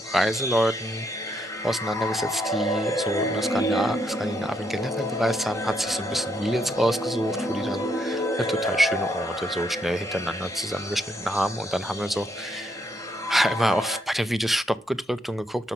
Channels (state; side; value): normal; both; correlation 0.75